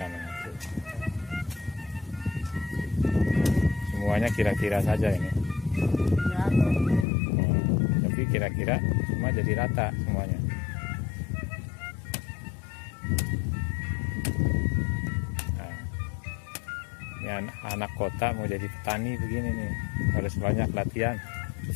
itu. Semuanya kira-kira saja ini. Tapi kira-kira semua jadi rata semuanya. Nah, ini anak kota mau jadi petani begini nih, harus banyak latihan.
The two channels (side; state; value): right; drops out; at 7.1 s